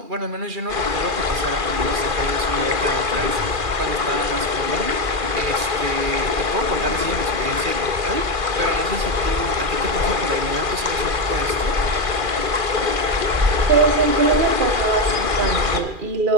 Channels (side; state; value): left; late; 2.4 ms